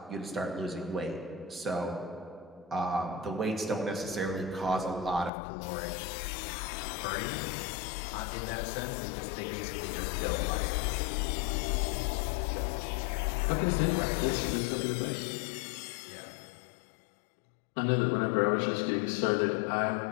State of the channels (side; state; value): right; drops out; at 5.3 s